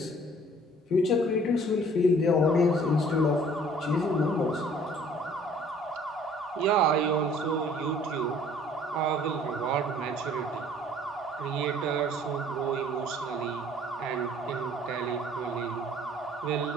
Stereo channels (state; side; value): normal; both; correlation 0.54